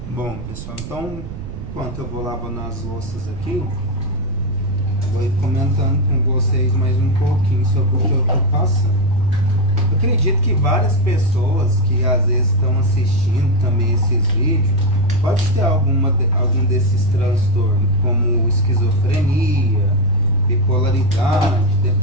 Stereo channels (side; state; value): right; noise; rumble, 10 dB below the sound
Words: Bom, pessoal, então, enquanto eu vou lavando as louças aqui, vou ir comentando com vocês mais um pouquinho sobre o que eu estou passando. Eu acredito que várias pessoas que às vezes estão assistindo também esses vídeos pode ter algum desses transtornos, como esquizofrenia, bipolaridade,